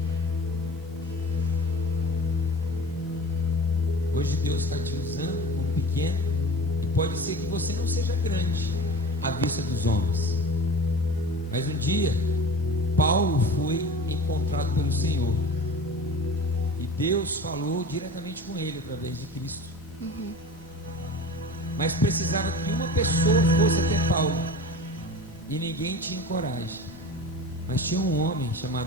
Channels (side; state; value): both; normal; correlation 0.36